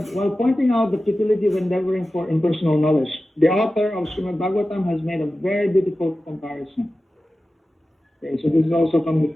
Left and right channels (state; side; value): normal; both; correlation 0.94